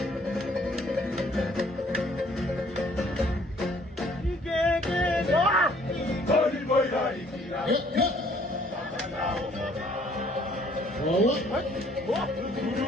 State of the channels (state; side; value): normal; both; correlation 0.61